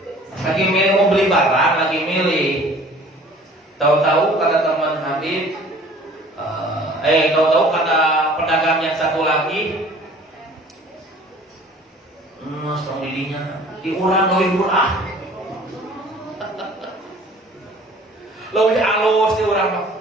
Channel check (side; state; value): both; normal; correlation 0.50